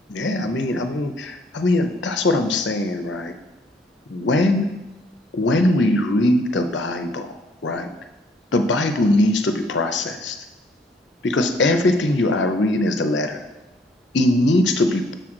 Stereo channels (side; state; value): both; normal; correlation 0.64